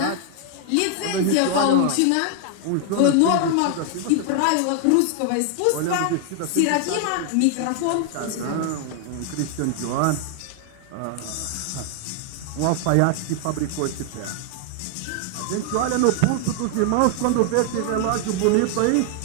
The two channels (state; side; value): different; both; correlation 0.00